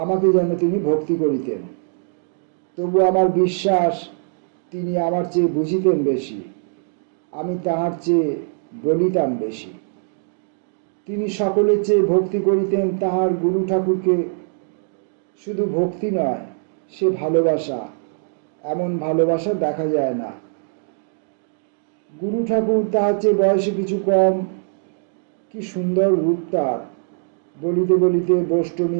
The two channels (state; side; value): silent; left; 64 dB below the other